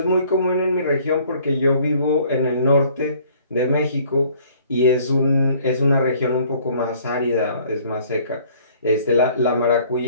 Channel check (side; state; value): both; inverted; correlation -0.57